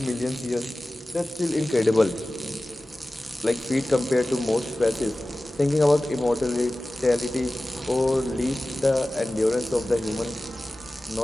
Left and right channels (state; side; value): normal; both; correlation 0.96